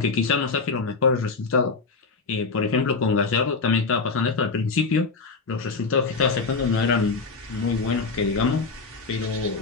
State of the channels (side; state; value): right; quieter; 4.3 dB